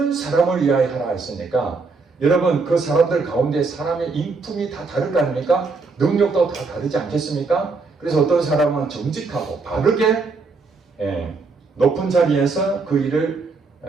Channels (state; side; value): quieter; left; 4.2 dB